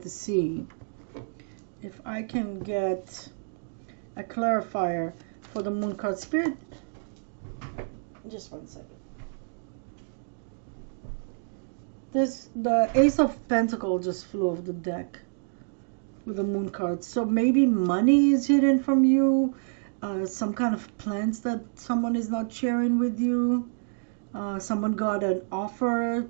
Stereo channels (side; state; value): left; silent; digital silence